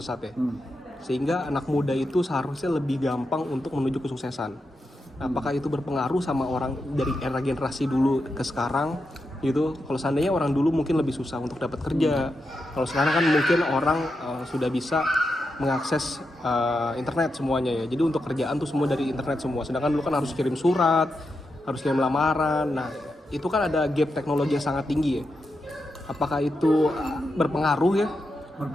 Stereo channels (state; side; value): normal; both; correlation 0.87